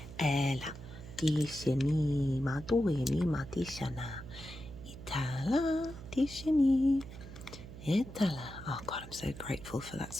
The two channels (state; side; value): noise; right; hum, 14 dB below the sound